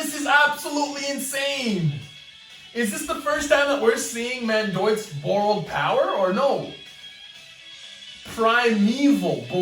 is absolutely insane. Is this the first time that we're seeing Mandoik's borrowed power or no? Primeval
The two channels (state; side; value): identical; both; correlation 1.00